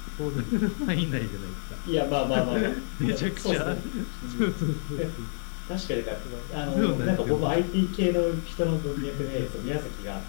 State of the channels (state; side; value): silent; right; 59 dB below the other